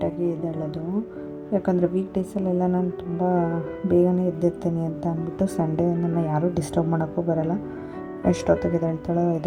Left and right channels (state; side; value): identical; both; correlation 1.00